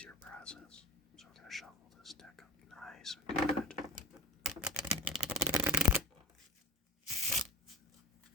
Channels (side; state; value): both; normal; correlation 0.31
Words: process. So I'm going to shuffle this deck up nice and good.